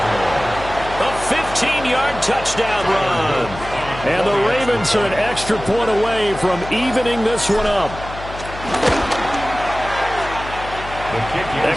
A 15-yard touchdown run. And the Ravens are an extra point away from evening this one up.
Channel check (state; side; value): noise; left; hum, 12 dB below the sound